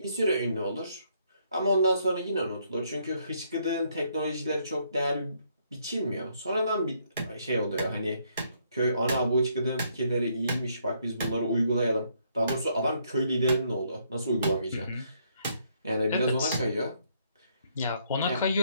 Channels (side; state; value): both; inverted; correlation -0.71